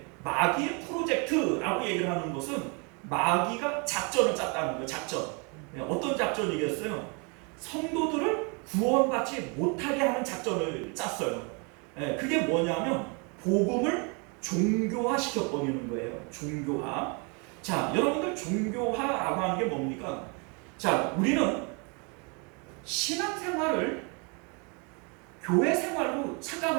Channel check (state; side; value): quieter; left; 33.3 dB